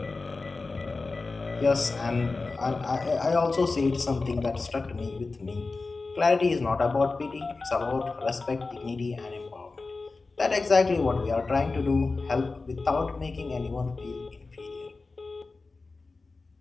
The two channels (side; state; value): right; quieter; 3.8 dB